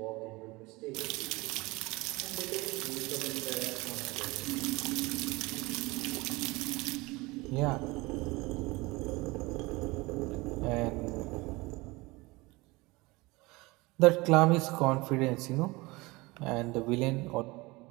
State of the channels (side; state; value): left; quieter; 23.1 dB